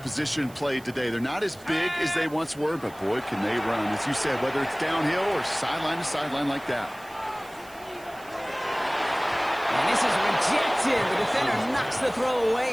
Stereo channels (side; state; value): right; noise; hiss, 23 dB below the sound